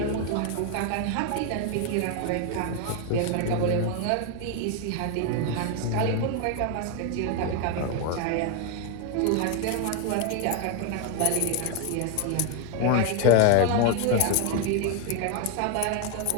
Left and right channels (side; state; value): both; different; correlation 0.01